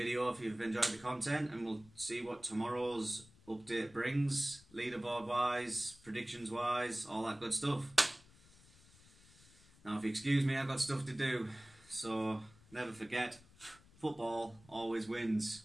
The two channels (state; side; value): noise; left; rumble, 26 dB below the sound